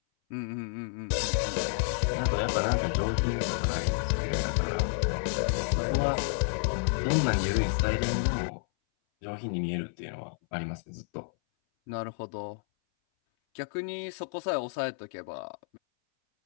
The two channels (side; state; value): right; silent; 58 dB below the other